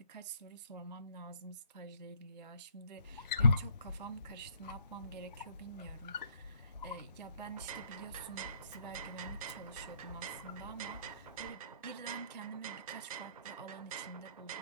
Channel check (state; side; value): inverted; both; correlation -0.64